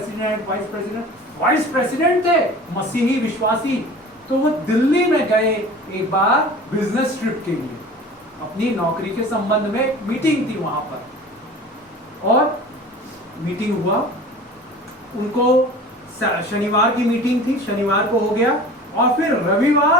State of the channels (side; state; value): both; normal; correlation 0.40